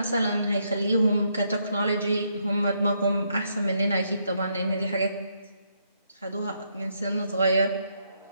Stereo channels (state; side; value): inverted; both; correlation -0.76